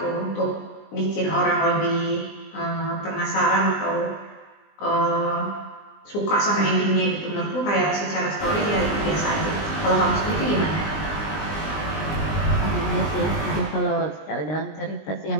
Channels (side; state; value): right; late; 20 ms